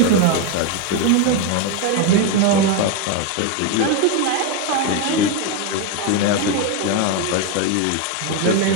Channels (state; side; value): different; both; correlation 0.02